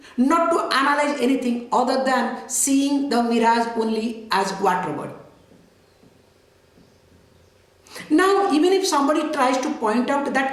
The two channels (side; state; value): both; identical; correlation 1.00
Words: not to analyze anything other than seeing the mirage only as water body. Now, even if somebody tries to point out